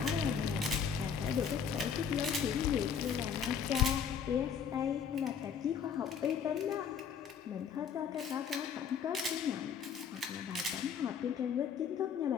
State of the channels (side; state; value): right; quieter; 7.2 dB